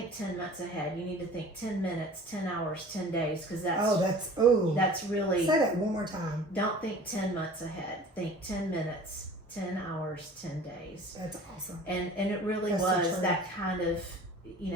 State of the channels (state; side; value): normal; both; correlation 0.44